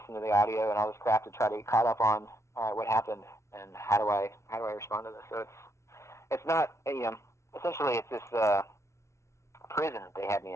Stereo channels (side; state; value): right; late; 0.14 ms